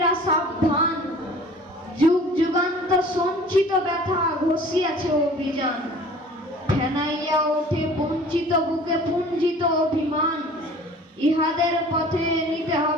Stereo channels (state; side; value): normal; both; correlation 0.46